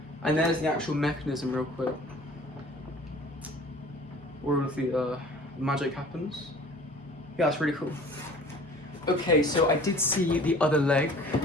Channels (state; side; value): normal; both; correlation 0.47